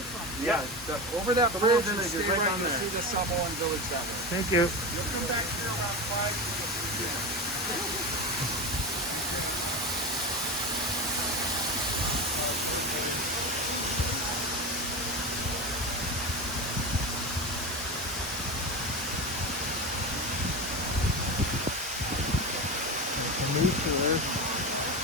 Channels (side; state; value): both; normal; correlation 0.22